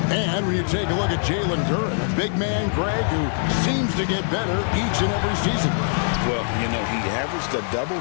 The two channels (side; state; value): right; silent; 64 dB below the other